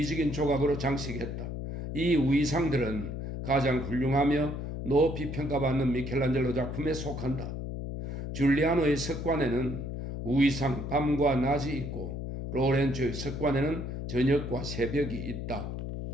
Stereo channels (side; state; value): left; noise; hum, 5 dB below the sound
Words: 조각으로 장식했다. 이 우의상들은 가장 훌륭하며 높이 평가받는 미켈란젤로 작품에 속한다. 줄리아노의 석관에는 우의상 밤과 낮이 있고 로렌초의 석관에는 저녁과 새벽이 있다.